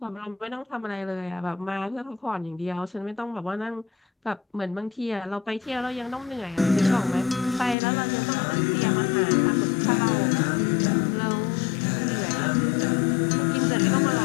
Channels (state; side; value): drops out; right; at 7.8 s